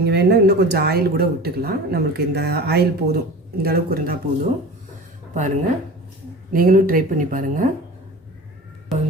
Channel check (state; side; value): normal; both; correlation 0.36